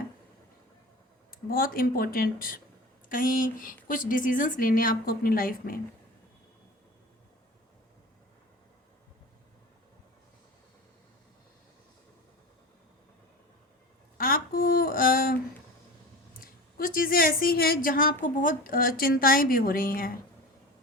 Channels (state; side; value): normal; both; correlation 0.33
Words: बहुत इम्पोर्टेंट कहीं कुछ डिसीजंस लेने आपको अपनी लाइफ में। आपको कुछ चीज़ें ऐसी हैं जहाँ आपको बहुत चिंताएं भी हो रही हैं